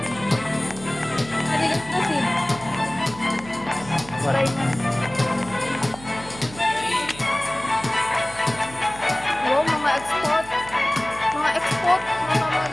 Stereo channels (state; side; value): noise; right; hum, 17 dB below the sound